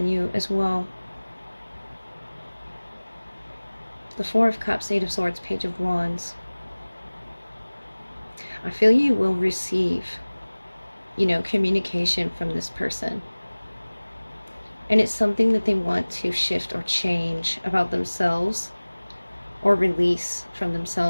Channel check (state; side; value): inverted; both; correlation -1.00